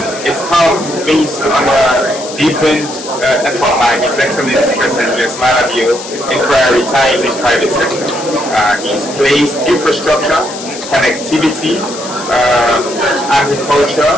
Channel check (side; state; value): left; noise; hiss, 12 dB below the sound